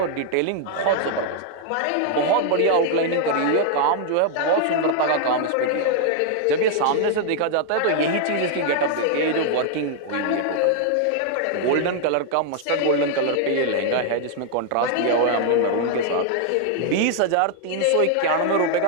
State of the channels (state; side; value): different; both; correlation 0.00